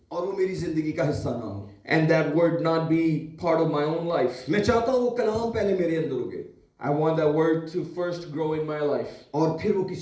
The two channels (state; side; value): identical; both; correlation 1.00